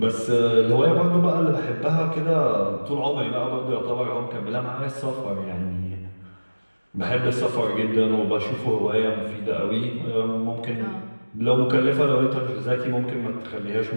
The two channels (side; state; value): both; inverted; correlation -1.00